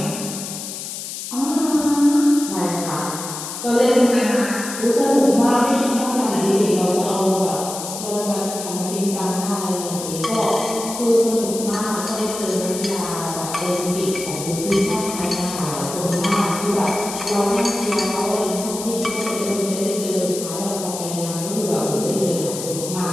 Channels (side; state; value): left; noise; hiss, 8 dB below the sound